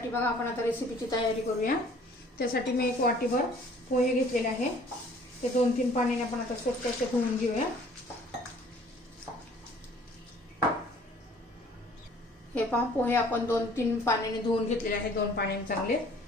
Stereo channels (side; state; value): both; normal; correlation 0.54